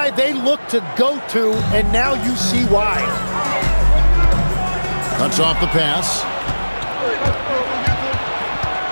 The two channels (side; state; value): both; inverted; correlation -1.00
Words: they look to go to, and now you see why. Cuts off the pass.